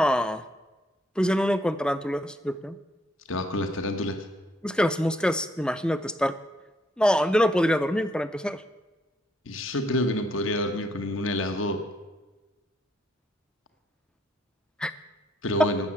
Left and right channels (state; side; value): normal; both; correlation 0.72